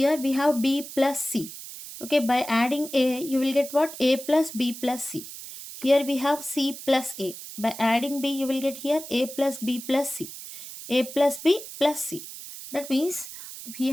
we have B plus C. Okay, by adding A, you will get what? A plus B plus C. Here we have C plus A. By adding B, you will get here A plus B plus C. A plus B plus C. That means we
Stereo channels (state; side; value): noise; right; hiss, 12 dB below the sound